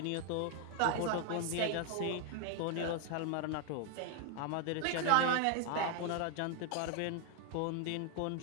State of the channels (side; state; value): both; different; correlation 0.00